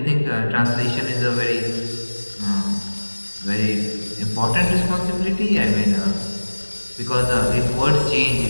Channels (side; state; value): both; inverted; correlation -1.00